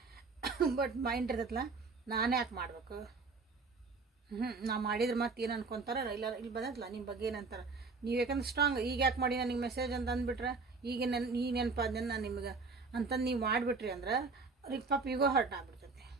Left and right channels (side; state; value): left; quieter; 4.2 dB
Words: ಬಟ್ ಮೈಂಡ್ ಇರ್ತೈತಲ್ಲ, ನಾನೇ ಯಾಕೆ ಮಾಡ್ಬೇಕು, ನಾ ಮಾಡಿದ್ರೆ ಮತ್ತೆ ಏನು ಅನ್ಕೊತಾರೆ, ಇಲ್ಲ ಇಲ್ಲಿ ಬಂದೈತಲ್ಲ ನಿಮ್ಮ ಬಗ್ಗೆ ಏನಂತಾರೆ, ನೀವು ಯಾಕಂದ್ರೆ ಸ್ಟ್ರಾಂಗ್ ಈಗ ಯಾಕೆ ಮಾಡಿ ನನಗೆ ಮೆಸೇಜ್ ಅಂತ ಅಂದ್ಬಿಟ್ರೆ ಈಗ ಈ ನೆನಪಾದ ನಾನು ನಿಮ್ಗೆ ಅಂತಂದು ನೀವು ಮಾಡಿಬಿಟ್ರಿ ಅಂದ್ರೆ ಅವ್ರಿಗೆ ಪಾಪ ಈಗೋ ಹರ್ಟ್ ಆಗ್ಬಿಡ್ತೈತಿ.